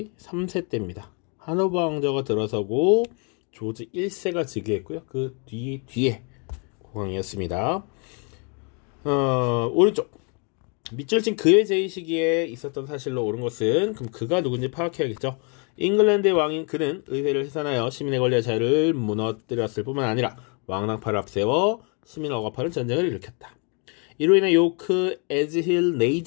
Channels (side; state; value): right; quieter; 36.2 dB